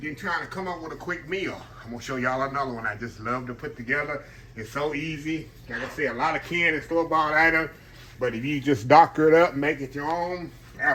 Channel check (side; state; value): both; identical; correlation 1.00